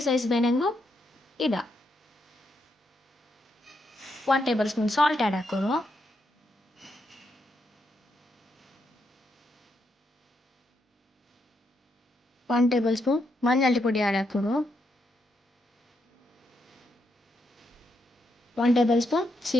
ಸೈಜ್ ಬೇನೆಂಗು ಇಡ 1 ಟೇಬಲ್ ಸ್ಪೂನ್ ಸಾಲ್ಟ್ ಆ್ಯಡ್ ಹಾಕೋರು. 1 ಟೇಬಲ್ ಸ್ಪೂನ್ ಮಂಜಾಳಿ ಪುಡಿ ಆ್ಯಡ್ ಹಾಕೋರು. 1 tablespoon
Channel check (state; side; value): normal; both; correlation 0.80